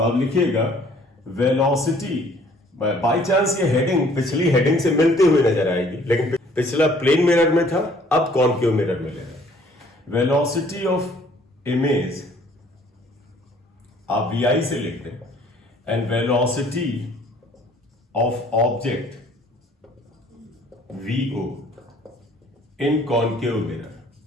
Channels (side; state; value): both; normal; correlation 0.58